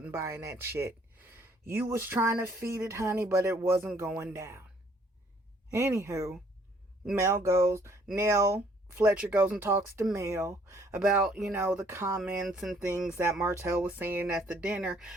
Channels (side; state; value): both; normal; correlation 0.62